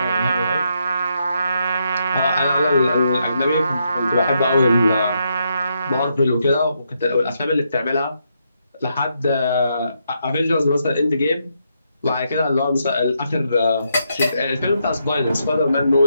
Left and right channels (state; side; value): inverted; both; correlation -0.79